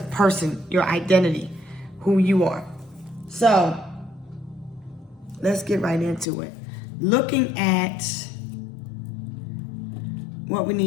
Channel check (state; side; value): drops out; right; at 6.2 s